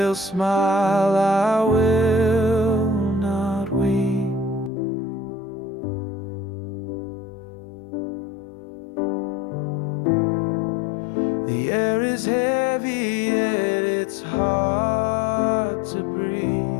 smile, I will not weep. The air is heavy, yet it's hard to breathe.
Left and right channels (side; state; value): right; drops out; at 4.7 s